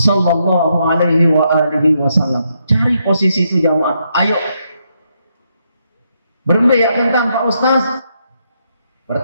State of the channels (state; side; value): inverted; both; correlation -0.78